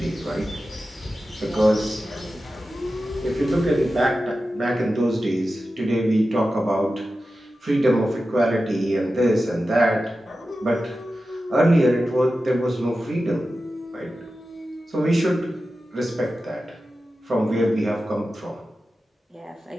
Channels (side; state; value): both; normal; correlation 0.93